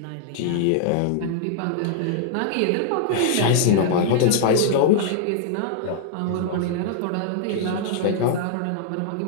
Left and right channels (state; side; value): different; both; correlation -0.01